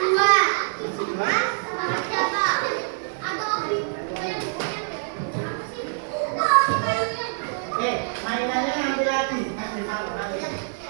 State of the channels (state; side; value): silent; left; digital silence